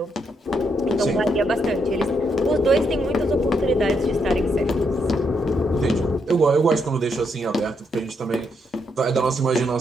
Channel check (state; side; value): normal; both; correlation 0.78